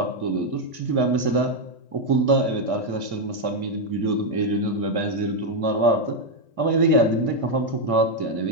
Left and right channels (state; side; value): late; left; 1.6 ms